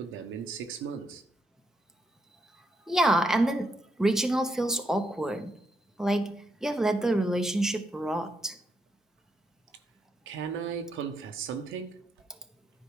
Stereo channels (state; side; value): normal; both; correlation 0.79